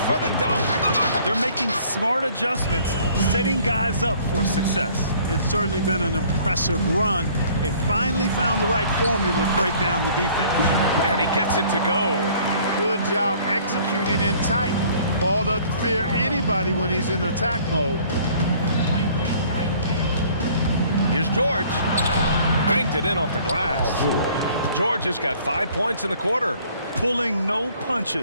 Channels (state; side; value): inverted; both; correlation -0.55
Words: for the dunk. They're making smart adjustments, setting guys up for success. It's certainly been an impressive run. They finally found the right formula to break down the defense. And he gets it to go. Good job executing in tight. Ball doesn't fear anybody when he's in attack mode. Here's George. Banked it in off the glass. George has got 5 points in the quarter. Pulling no